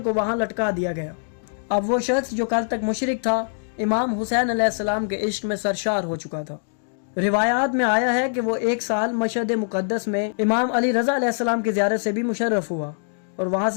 وہاں لٹکا دیا گیا۔ اب وہ شخص جو کل تک مشرک تھا امام حسین علیہ السلام کے عشق میں سرشار ہو چکا تھا۔ روایات میں آیا ہے کہ وہ ایک سال مشہد مقدس میں امام علی رضا علیہ السلام کی زیارت سے بھی مشرف ہوا اور وہاں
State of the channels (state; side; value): silent; right; digital silence